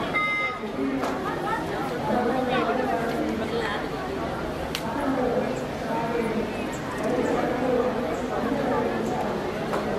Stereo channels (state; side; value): identical; both; correlation 1.00